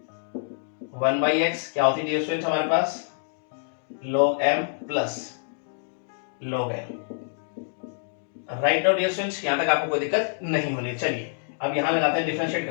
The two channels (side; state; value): right; silent; digital silence